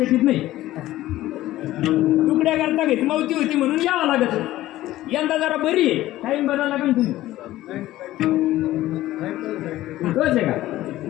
नाही. तुकड्या करता घेत मौती होती म्हणून यावं लागत. यंदा जरा बरी आहे, टाईम बदला लागेल तुम्ही. तोच आहे का?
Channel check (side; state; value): right; quieter; 15.4 dB